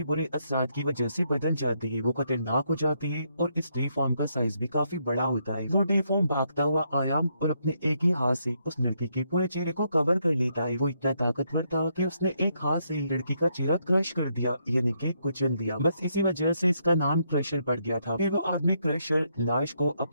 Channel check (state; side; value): inverted; both; correlation -0.76